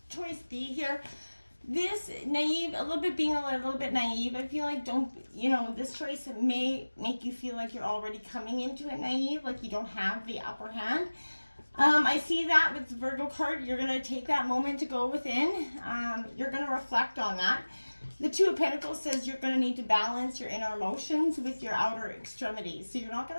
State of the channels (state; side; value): inverted; both; correlation -1.00